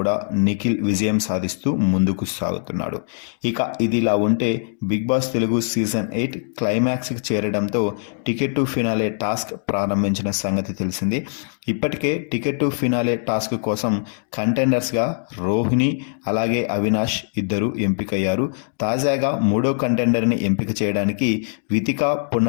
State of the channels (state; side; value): silent; right; digital silence